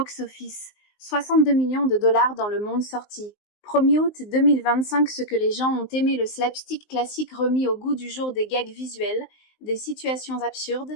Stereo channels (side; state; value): right; late; 19 ms